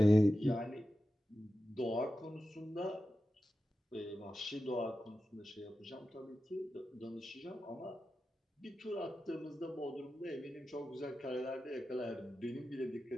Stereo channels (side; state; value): both; normal; correlation 0.92